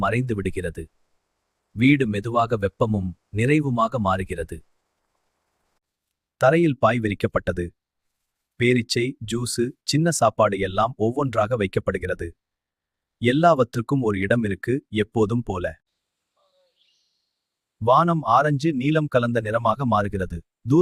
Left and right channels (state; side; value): identical; both; correlation 1.00